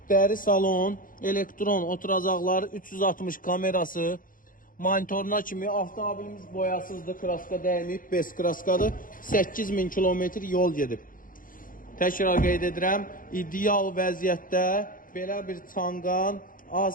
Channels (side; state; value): right; late; 0.40 ms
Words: Dəri salon, elektron oturacaqları, 360 kamerası, monitoruna kimi avtomobilimiz boyasızdır, kraska dəyməyib, bez kraskadır. 8000 kilometr yol gedib. Təkrar qeyd edirəm, ideal vəziyyətdə belə bir Çangan